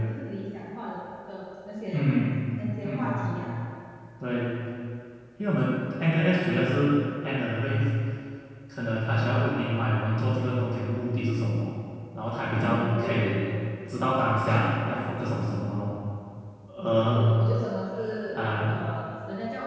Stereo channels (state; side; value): identical; both; correlation 1.00